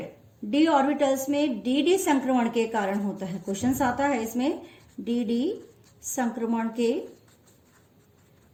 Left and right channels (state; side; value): identical; both; correlation 1.00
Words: डी ऑर्बिटल्स में डी संक्रमण के कारण होता है। क्वेश्चंस आता है इसमें डी संक्रमण के